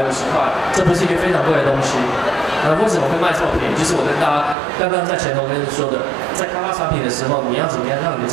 块，这不是一个非常贵的东西。为什么会卖这么便宜？就是我跟大家刚刚在前头跟说的，在开发产品的时候，你要怎么样让你的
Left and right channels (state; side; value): drops out; left; at 4.5 s